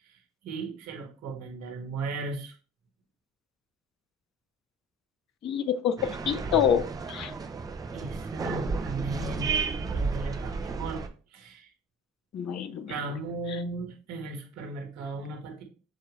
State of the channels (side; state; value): both; normal; correlation 0.39